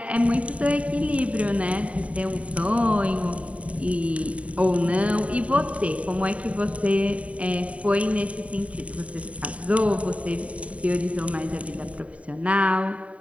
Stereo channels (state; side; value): late; left; 0.066 ms